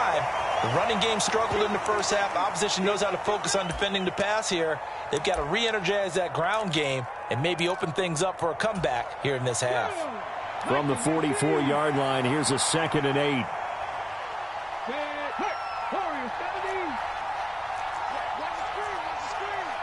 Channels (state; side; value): identical; both; correlation 1.00